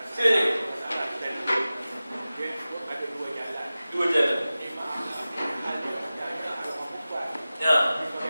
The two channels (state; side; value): inverted; both; correlation -0.96